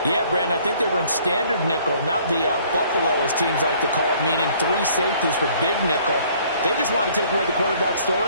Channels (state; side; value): inverted; both; correlation -0.58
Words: Yeah, Brandon, I think they were in standard nickel, not the Buffalo, as teams like to call it, meaning 3 safeties for big nickel. They just want to take away the quarterback's